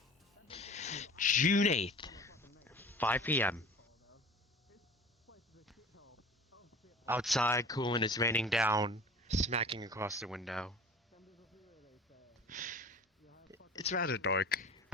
June 8th, 5 p.m. Outside, cool, and it's raining down, smacking across the window. It's rather dark,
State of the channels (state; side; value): normal; both; correlation 0.41